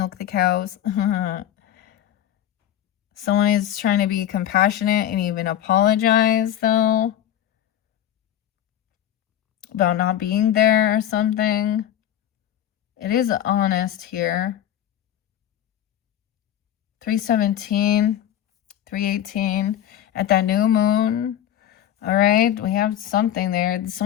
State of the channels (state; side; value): quieter; right; 11.2 dB